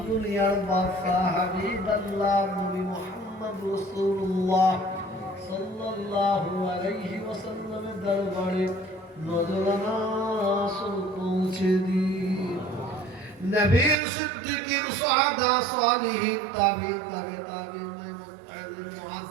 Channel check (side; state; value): left; drops out; at 14.0 s